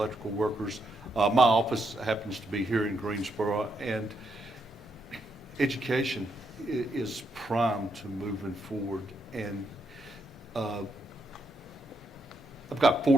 Workers, my office happens to be here in Greensboro, and education is prime to moving forward. And I've got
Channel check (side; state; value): both; normal; correlation 0.79